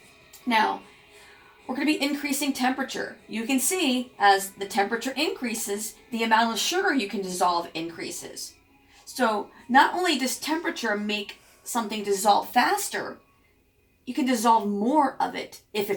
Now, we're going to be increasing temperature. You can see as the temperature increases, the amount of sugar you can dissolve increases. So not only does temperature make something dissolve faster, you can dissolve more of it if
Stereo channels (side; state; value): both; identical; correlation 1.00